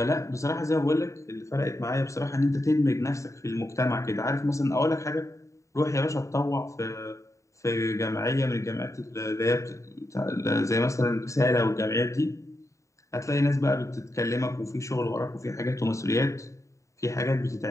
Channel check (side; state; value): right; late; 0.15 ms